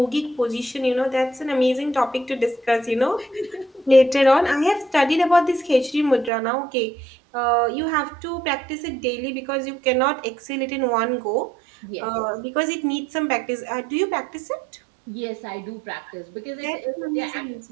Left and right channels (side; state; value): left; drops out; at 6.3 s